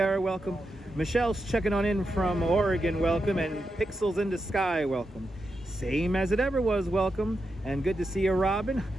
welcome. Michelle's checking on in from Oregon, welcome. And Pixels in the Sky, welcome. Same as it ever was, welcome. And good to see you, Robin.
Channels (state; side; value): normal; both; correlation 0.87